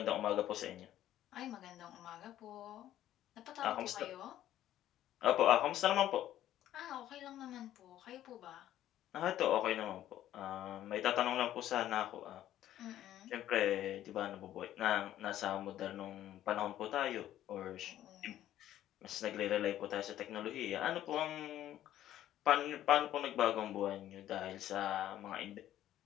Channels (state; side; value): quieter; right; 12.5 dB